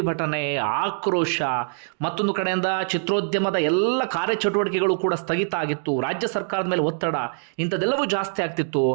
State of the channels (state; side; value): silent; left; digital silence